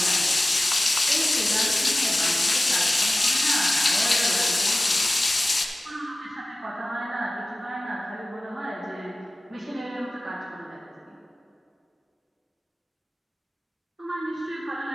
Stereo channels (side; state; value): both; normal; correlation 0.96